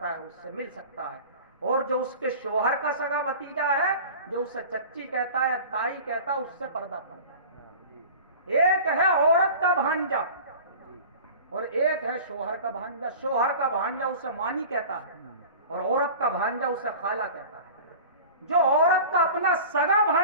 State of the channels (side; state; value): both; inverted; correlation -0.38